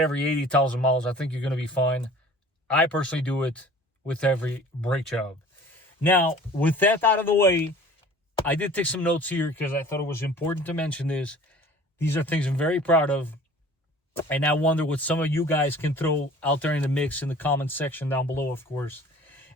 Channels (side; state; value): both; normal; correlation 0.47